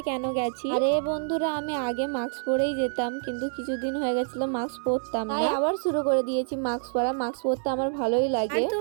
কেন গেছি। আরে বন্ধুরা, আমি আগে মাস্ক পরেই যেতাম, কিন্তু কিছুদিন হয়ে গেছিল মাস্ক পরতাম না, আবার শুরু করে দিয়েছি মাস্ক পরা। মাস্ক পরতে আমার ভালোই লাগে। আর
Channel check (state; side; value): silent; left; 60 dB below the other